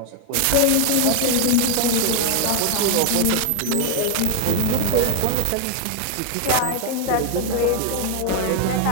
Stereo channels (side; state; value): both; different; correlation 0.00